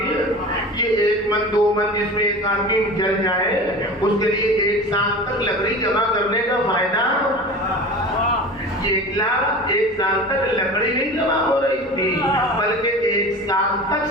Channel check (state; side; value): normal; both; correlation 0.34